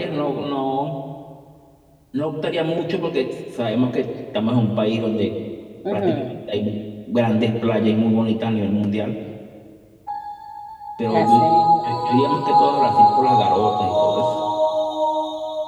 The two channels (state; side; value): identical; both; correlation 1.00